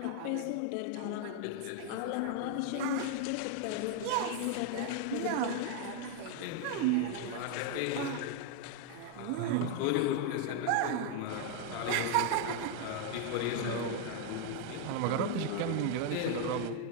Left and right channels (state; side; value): different; both; correlation 0.00